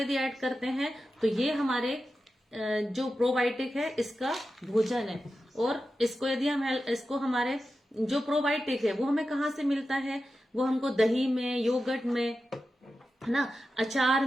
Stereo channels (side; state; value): both; normal; correlation 0.92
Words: ऐड करते हैं तो ये हमारे जो प्रोबायोटिक है इसका भोजन है। और इसको यदि हम, इसको हमारे जो प्रोबायोटिक है वो हमें कहाँ से मिलता है, वो हमको दही में, योगर्ट में, है ना, अचार